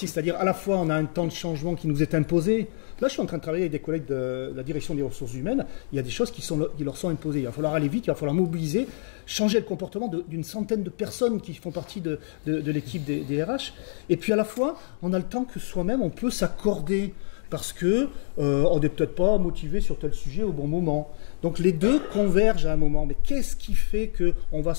à dire, à la fois, on a un temps de changement qui nous est imposé. Là, je suis en train de travailler avec des collègues de la direction des ressources humaines. Il y a des choses qui leur sont imposées. Il va falloir aller vite, il va falloir mobiliser, changer le comportement d'une centaine de personnes qui font partie de l'équipe des RH. Et puis, à la fois, on a le temps que soi-même, on peut s'accorder. Parce que on n'est peut-être pas motivé sur tel sujet au bon moment. Donc les deux convergent à un moment. Mais qu'est-ce qui fait qu'on va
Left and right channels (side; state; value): right; silent; digital silence